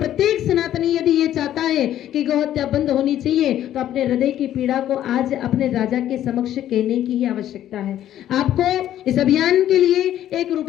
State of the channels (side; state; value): right; quieter; 11.9 dB